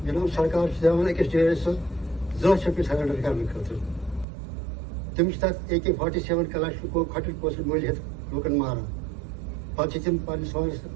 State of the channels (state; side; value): drops out; left; at 4.2 s